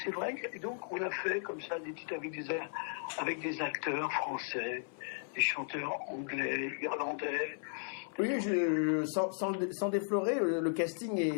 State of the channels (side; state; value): right; silent; 54 dB below the other